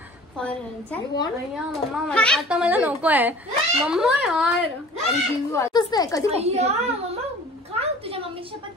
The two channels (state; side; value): normal; both; correlation 0.46